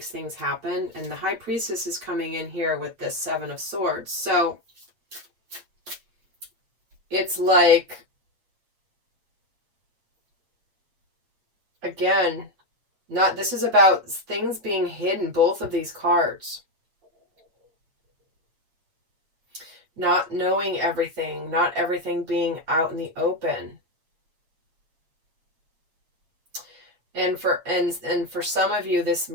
things happen. And the High Priestess is coming in here with this Seven of Swords. So it's like, again, this is about things being hidden, both of these cards. Not knowing everything, not everything being out in the open. And for some of you, this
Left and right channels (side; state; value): left; late; 8.5 ms